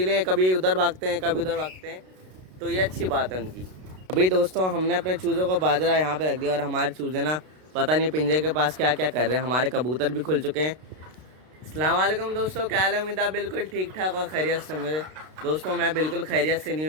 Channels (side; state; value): left; late; 32 ms